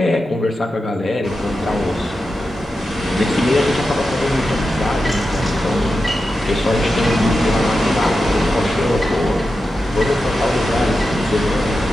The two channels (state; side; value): normal; both; correlation 0.90